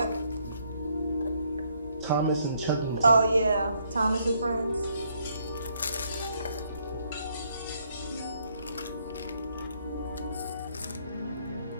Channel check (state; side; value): inverted; both; correlation -0.71